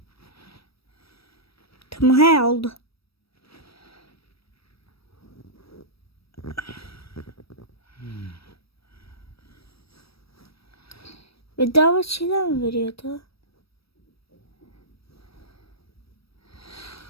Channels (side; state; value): right; late; 0.76 ms